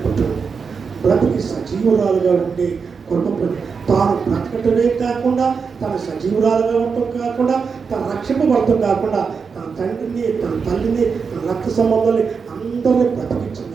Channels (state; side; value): quieter; left; 5.6 dB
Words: కుటుంబం. బ్రతికి సజీవురాలుగా ఉండే కుటుంబం. తాను బ్రతకటమే కాకుండా తన సజీవురాలుగా ఉండటం కాకుండా తన రక్షింపబడటం కాకుండా తన తండ్రిని, తన తల్లిని, తన రక్త సంబంధాన్ని అందరినీ